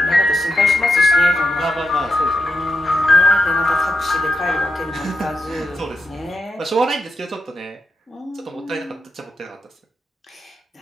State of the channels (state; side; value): normal; both; correlation 0.85